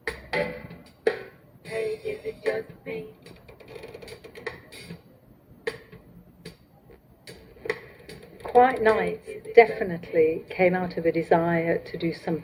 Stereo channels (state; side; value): identical; both; correlation 1.00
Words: Hey, is it just me? Quiet Nights definitely came out of a desire to do